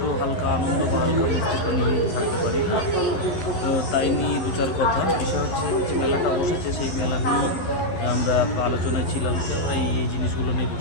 হালকা আনন্দ বা হালকা মিষ্টি তো নিয়ে থাকতে পারি না। তো তাই নিয়ে দু চার কথা। বিষয় হচ্ছে যে মেলাটা বসেছে, সেই মেলা নিয়ে আমরা আলোচনায় ছিলাম যে আমরা এই জিনিসগুলো নেব।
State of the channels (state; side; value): late; right; 11 ms